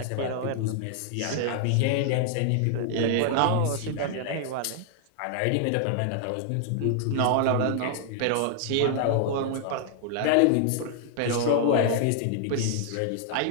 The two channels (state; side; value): different; both; correlation 0.00